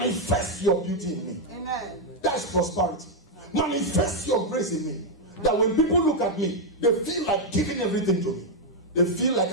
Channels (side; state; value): both; normal; correlation -0.01